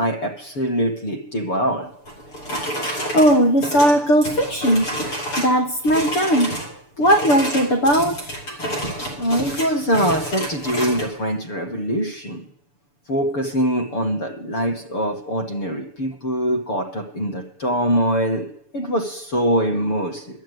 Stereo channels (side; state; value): right; late; 6.9 ms